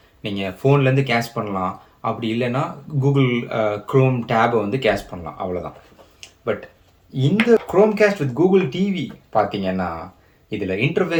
நீங்கள் ஃபோன்லேருந்து கேஷ் பண்ணலாம், அப்படி இல்லைன்னா கூகுள் க்ரோம் டேபை வந்து கேஷ் பண்ணலாம், அவ்வளோதான். பட் இந்த குரோம்காஸ்ட் வித் கூகுள் டிவி பார்த்தீங்கன்னா இதில்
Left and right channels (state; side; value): identical; both; correlation 1.00